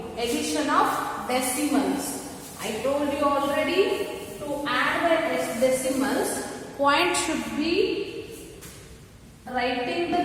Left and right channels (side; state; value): both; identical; correlation 1.00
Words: Addition of decimals. I told you already, to add the decimals, point should be, writing the